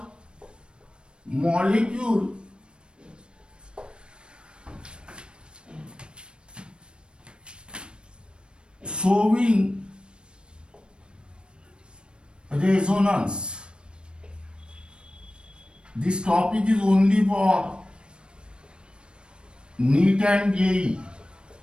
molecule showing resonance. This topic is only for NEET and JEE.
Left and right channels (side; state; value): left; late; 0.055 ms